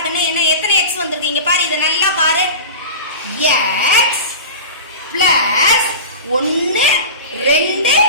கண்ணு. என்ன எத்தனை எக்ஸ் வந்திருக்கு இங்க பாரு, இதை நல்லா பாரு. எக்ஸ் பிளஸ் 1 2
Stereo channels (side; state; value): both; inverted; correlation -0.31